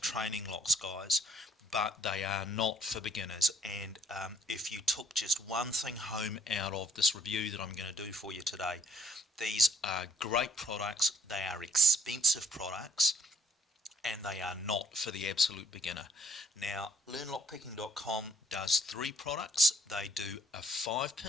locks, guys, but they are not for beginners. And if you took just one thing home out of this review that I'm going to do for you today, these are great products, they are expensive products, and they are not for the absolute beginner. Now, learnlockpicking.com does 3 products. They do a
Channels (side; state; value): both; normal; correlation 0.63